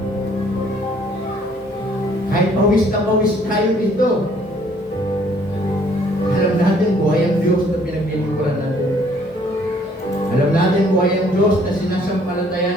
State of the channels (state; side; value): normal; both; correlation 0.62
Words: Kahit pawis na pawis tayo dito. Alam natin buhay ang Diyos na pinaglilingkuran natin. Alam natin buhay ang Diyos na